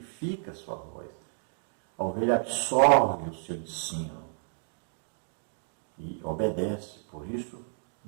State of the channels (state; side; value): silent; left; 57 dB below the other